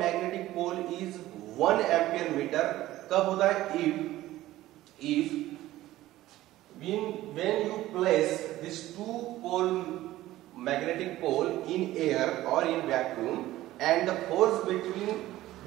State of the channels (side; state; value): left; quieter; 15.6 dB